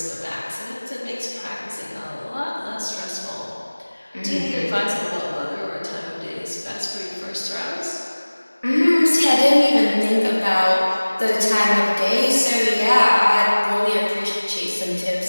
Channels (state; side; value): inverted; both; correlation -1.00